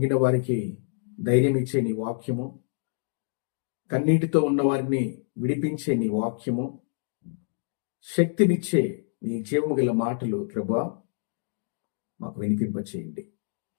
వారికి ధైర్యం ఇచ్చే నీ వాక్యము, కన్నీటితో ఉన్న వారిని విడిపించే నీ వాక్యము, శక్తినిచ్చే నీ జీవము గల మాటలు ప్రభువా మాకు వినిపింపచేయండి.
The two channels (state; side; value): silent; right; digital silence